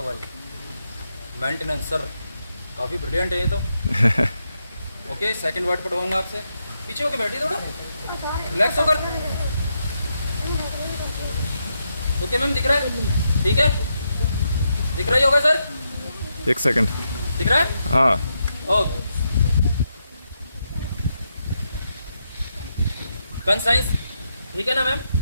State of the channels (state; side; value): inverted; both; correlation -0.82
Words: हुआ है। ये मेंटेनेंस सर काफ़ी ब्रिलियंट है ये तो। ओके सेकंड वर्ड पढ़वाऊंगा आपसे। पीछे होकर बैठिए थोड़ा, रिलैक्स होकर। ओके मैम दिख रहा है? ठीक है दिख रहा ही होगा सर। एक सेकंड। दिख रहा है? हाँ। ओके कंसाइंस ठीक है ना मैम?